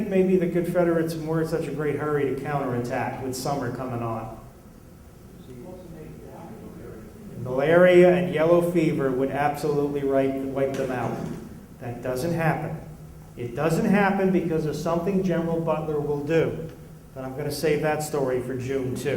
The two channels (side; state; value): both; identical; correlation 1.00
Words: maybe the Confederates were in such a great hurry to counterattack with summer coming on? Malaria and yellow fever would absolutely wipe them out. That doesn't happen. It doesn't happen because of something General Butler will do. But I'm going to save that story for June,